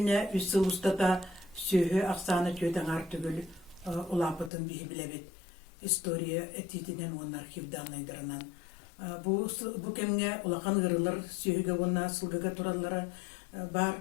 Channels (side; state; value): right; drops out; at 4.5 s